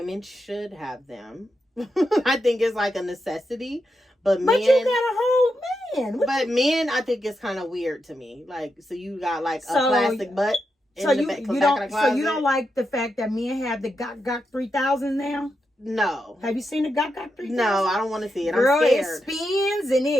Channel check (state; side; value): normal; both; correlation 0.86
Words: should have them. I think it's like a necessity, But you got a whole man. But men, I think it's kind of weird to me. Like, so you got like a plastic butt. So you don't like the fact that men have the Gok 3000 now? No. Have you seen the Gok 3000? No, I don't want to see it. Girl, I'm scared. It spins and